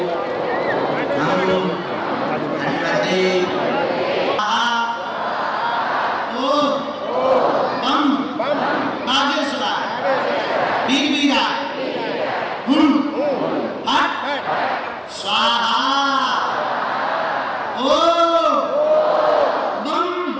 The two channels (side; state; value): both; identical; correlation 1.00